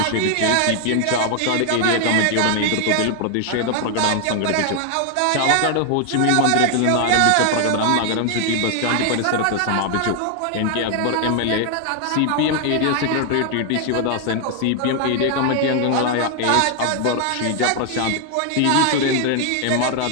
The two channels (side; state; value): both; different; correlation 0.00